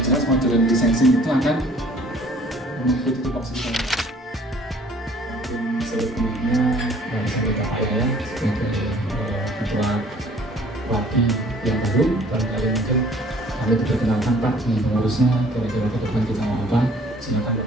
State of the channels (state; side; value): normal; both; correlation 0.54